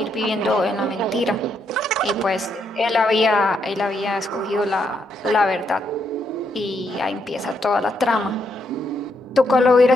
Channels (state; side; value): normal; both; correlation 0.77